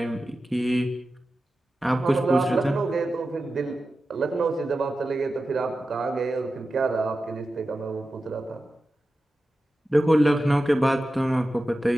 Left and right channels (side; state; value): both; normal; correlation 0.93